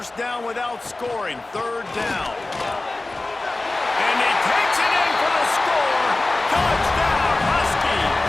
down without scoring. 3rd down. And he takes it in for the score. Touchdown, Husky!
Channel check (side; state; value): right; quieter; 3.0 dB